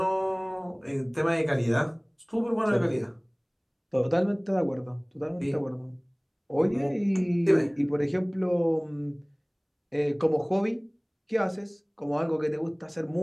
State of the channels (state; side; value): identical; both; correlation 1.00